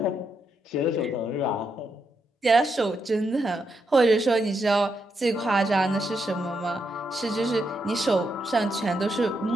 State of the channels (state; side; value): normal; both; correlation 0.81